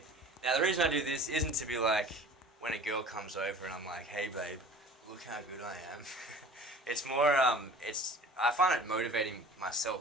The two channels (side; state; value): both; normal; correlation 0.43